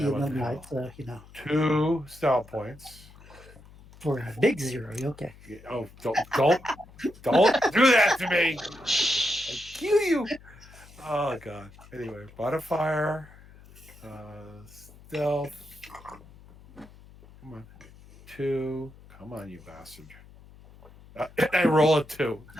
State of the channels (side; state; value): left; noise; hum, 22 dB below the sound